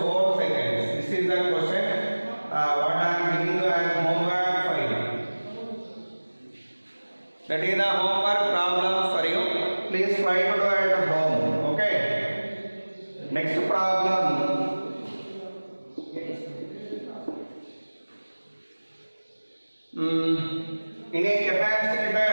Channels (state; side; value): inverted; both; correlation -1.00